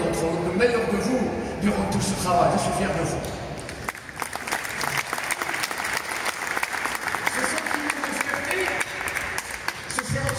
vous, le meilleur de vous durant tout ce travail. Je suis fier de vous.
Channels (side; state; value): both; identical; correlation 1.00